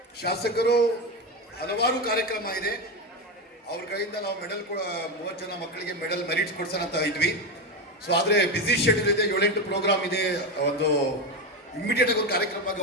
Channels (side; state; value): both; normal; correlation 0.14